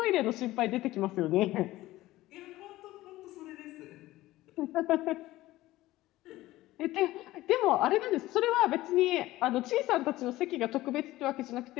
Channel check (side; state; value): right; quieter; 16.9 dB